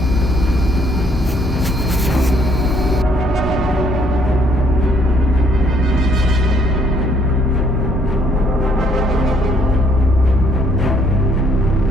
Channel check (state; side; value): normal; both; correlation 0.66